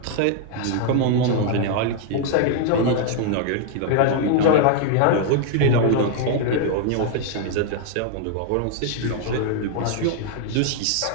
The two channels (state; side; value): different; both; correlation 0.00